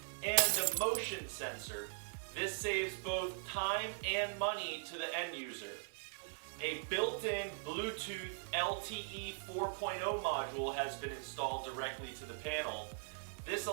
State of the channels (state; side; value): silent; left; 51 dB below the other